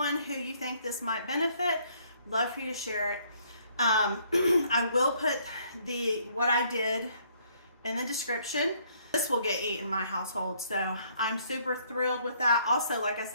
who you think this might benefit, love for you to share it. I will put what I did in the description. This will get eaten in my household, so I'm super thrilled with that. Also, like I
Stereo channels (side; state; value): both; inverted; correlation -0.66